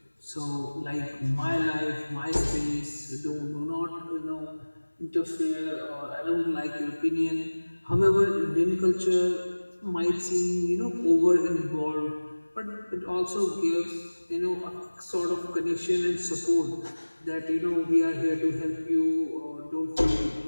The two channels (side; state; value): both; inverted; correlation -1.00